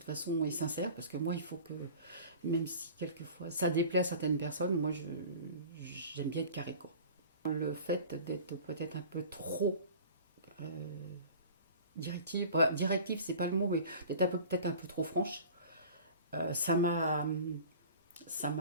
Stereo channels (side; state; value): both; inverted; correlation -0.41